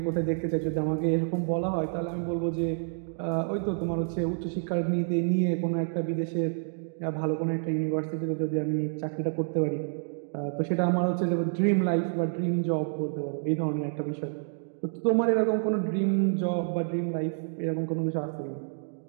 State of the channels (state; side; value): silent; left; digital silence